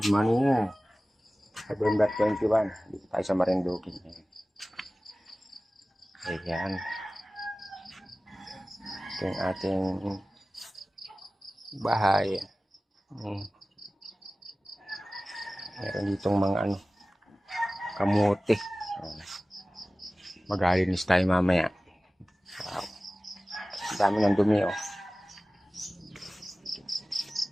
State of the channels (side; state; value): both; normal; correlation 0.97